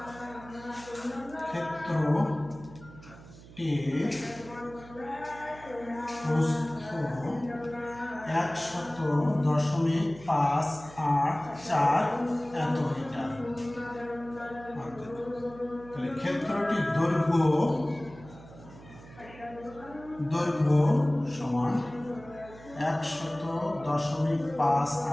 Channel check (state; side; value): noise; right; hum, 19 dB below the sound